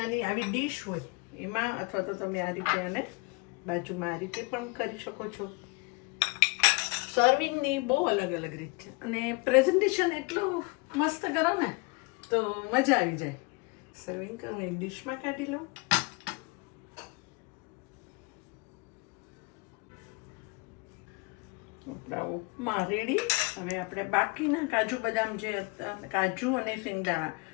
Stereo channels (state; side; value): quieter; right; 29.1 dB